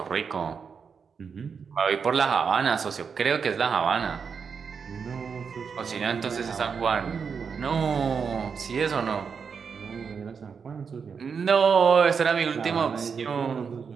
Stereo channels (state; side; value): quieter; left; 6.1 dB